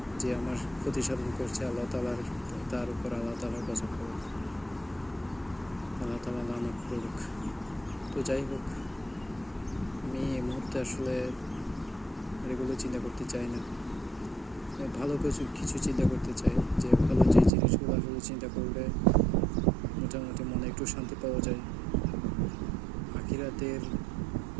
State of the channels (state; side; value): drops out; left; at 17.5 s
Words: যে আমার ক্ষতি সাধন করছে আল্লাহ তালার, তার উপর আল্লাহ তালার গজব করুক, আল্লাহ তালা লানত করুক। তো যাই হোক, আমি এই মুহূর্তে আসলে এগুলো চিন্তা করতে চাই না। ভালো কিছু চিন্তা করতে চাই, যে ভালো যে জিনিসগুলো আসলে চিন্তা করলে মোটামুটি মনে একটু শান্তি পাওয়া যায়।